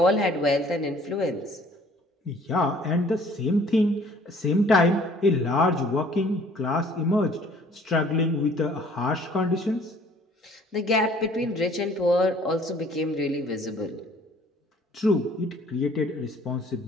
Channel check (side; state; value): both; normal; correlation 0.55